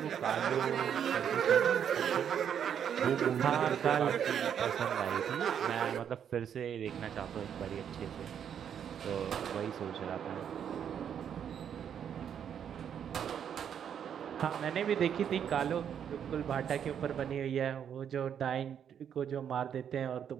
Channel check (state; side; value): quieter; left; 8.5 dB